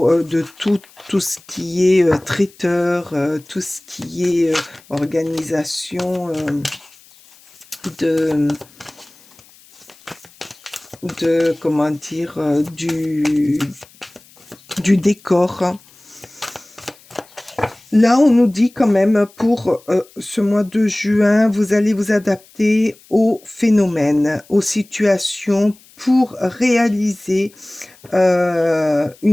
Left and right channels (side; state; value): left; noise; hiss, 27 dB below the sound